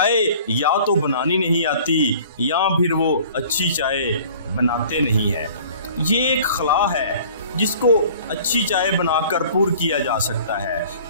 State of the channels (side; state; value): both; inverted; correlation -0.49